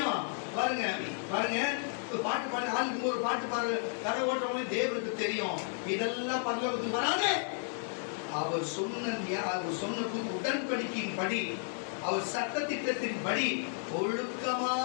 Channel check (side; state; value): right; silent; 56 dB below the other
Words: பாருங்க பாட்டு பாடி ஆளுக்கு ஒரு பாட்டு பாரு கதை ஓட்டுறவங்க தேவனுக்கு தெரியும். இதெல்லாம் பரலோகத்துக்கு வராது. அவர் சொன்ன உடன்படிக்கையின் படி, அவர் சட்ட திட்டத்தின் படி